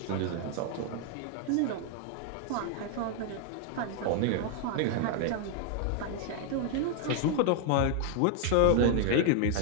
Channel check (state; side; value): different; both; correlation 0.00